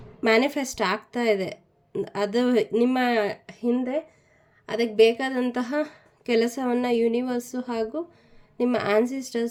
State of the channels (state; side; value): identical; both; correlation 1.00